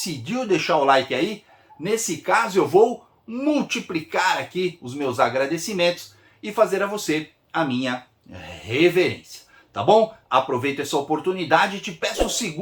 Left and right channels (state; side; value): identical; both; correlation 1.00